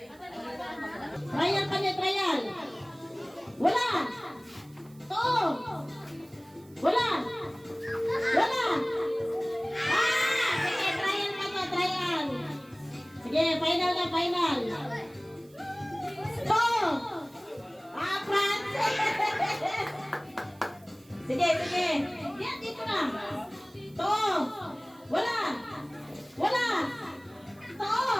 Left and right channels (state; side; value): noise; right; hiss, 28 dB below the sound